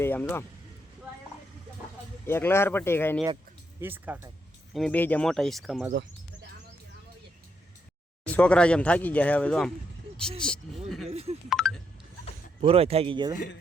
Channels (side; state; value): both; normal; correlation 0.78